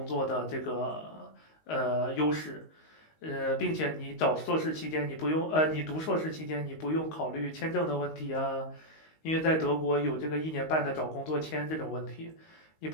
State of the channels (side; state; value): right; late; 19 ms